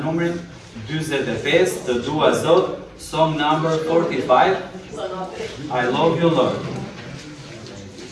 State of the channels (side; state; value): both; identical; correlation 1.00